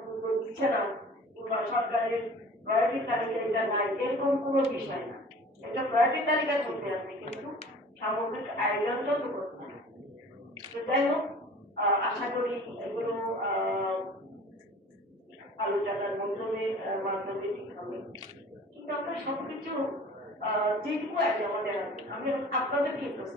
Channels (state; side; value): normal; both; correlation 0.45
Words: দিচ্ছে না কিংবা সরকারের প্রায়োরিটি তালিকা এটা নাই, এরকম কোনো বিষয় না। এটা প্রায়োরিটি তালিকার মধ্যে আছে, কিন্তু সামগ্রিক আয়োজনটা তো করছে। তো যাই হোক, আশা করি এগুলো আলোচনার মাধ্যমে ঠিক হবে। কিন্তু আমরা সবকিছু যেটুকু আছে আমাদের আছে, আমি আপনাদেরকে